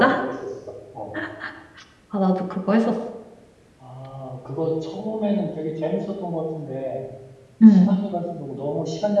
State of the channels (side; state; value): both; identical; correlation 1.00